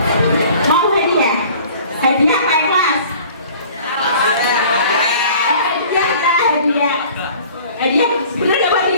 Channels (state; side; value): inverted; both; correlation -0.48